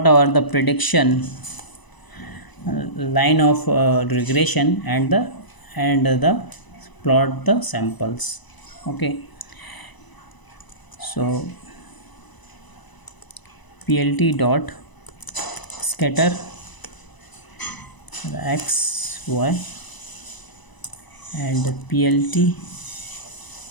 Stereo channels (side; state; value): right; late; 1.0 ms